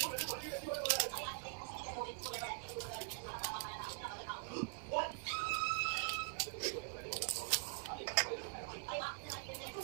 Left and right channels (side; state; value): left; quieter; 38.5 dB